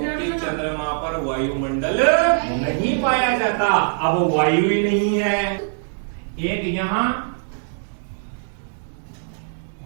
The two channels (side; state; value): left; silent; digital silence